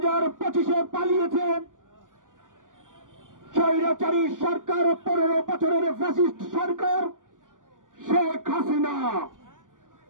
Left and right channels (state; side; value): late; left; 0.88 ms